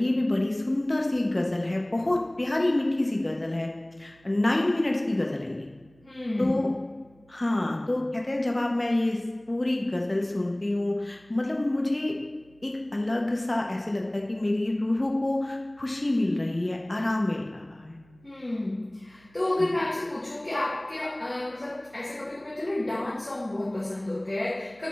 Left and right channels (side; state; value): right; noise; hum, 29 dB below the sound